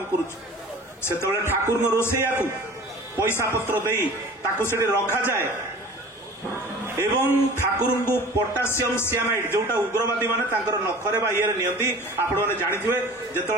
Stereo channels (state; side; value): normal; both; correlation 0.42